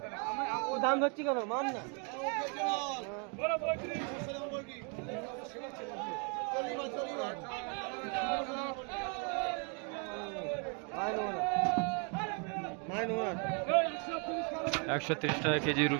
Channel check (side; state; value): left; quieter; 37.7 dB